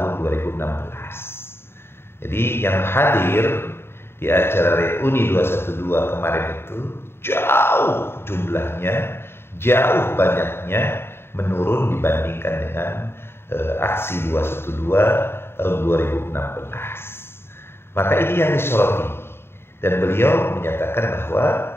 2016. Jadi yang hadir di acara reuni 212 kemarin itu jauh jumlahnya, jauh banyaknya menurun dibandingkan dengan aksi 212 tahun 2016. Maka ini yang disoroti, dan beliau menyatakan bahwa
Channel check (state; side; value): late; right; 0.11 ms